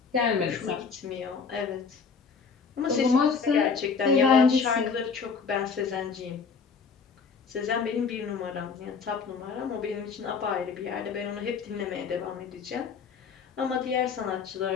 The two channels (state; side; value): quieter; right; 5.5 dB